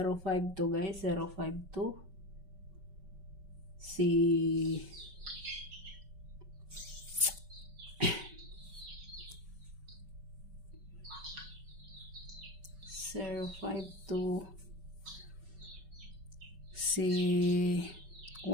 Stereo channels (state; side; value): late; left; 5.2 ms